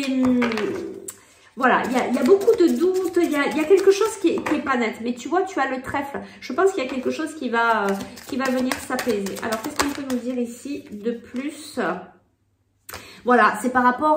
Voilà, il y a beaucoup de doutes, il y a quelque chose qui est pas net. Mais tu vois, tu as le trèfle. Je pense qu'il y a quelque chose qui va venir s'apaiser. Alors, qu'est-ce qu'on peut nous dire ici de plus? Voilà, c'est par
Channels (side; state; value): both; identical; correlation 1.00